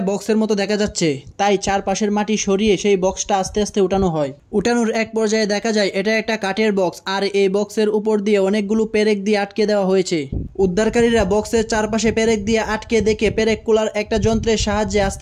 বক্সের মতো দেখা যাচ্ছে, তাই চারপাশের মাটি সরিয়ে সেই বক্সটা আস্তে আস্তে উঠানো হয়। উঠানোর এক পর্যায়ে দেখা যায় এটা একটা কাঠের বক্স, আর এই বক্সের উপর দিয়ে অনেকগুলো পেরেক দিয়ে আটকে দেওয়া হয়েছে। উদ্ধারকারীরা বক্সের চারপাশে পেরেক দিয়ে আটকে দেখে পেরেক কুলার একটা যন্ত্রের সাহায্যে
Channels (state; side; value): identical; both; correlation 1.00